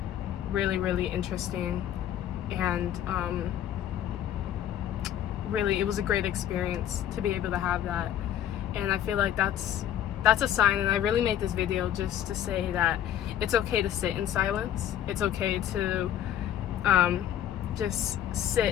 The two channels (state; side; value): quieter; right; 10.9 dB